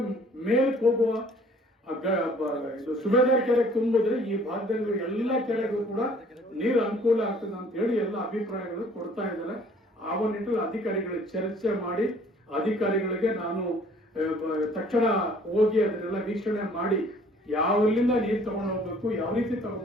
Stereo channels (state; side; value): normal; both; correlation 0.56